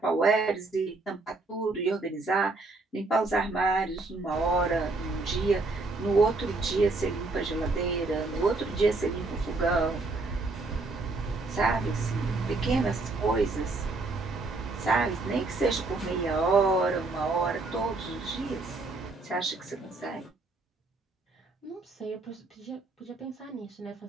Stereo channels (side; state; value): left; quieter; 3.4 dB